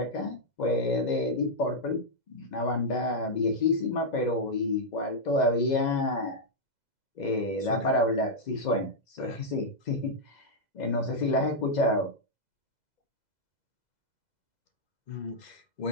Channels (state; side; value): late; right; 2.0 ms